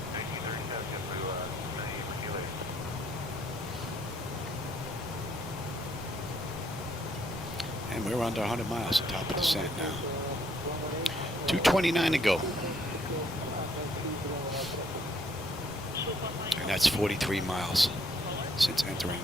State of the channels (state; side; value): normal; both; correlation 0.68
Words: 1937, JetBlue 98 for QA. And we're under 100 miles at top of descent now. 229 to go. And that's 43 miles since entering